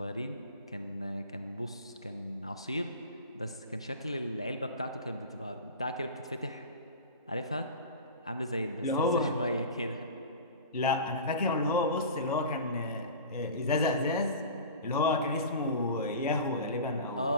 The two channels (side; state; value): both; inverted; correlation -0.34